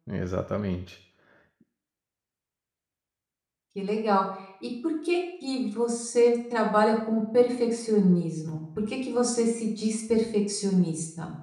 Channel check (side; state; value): both; identical; correlation 1.00